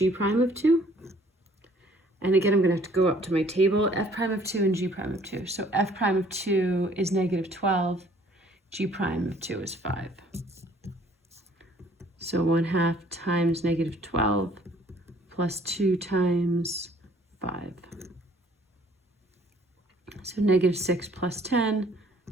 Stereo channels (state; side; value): normal; both; correlation 0.58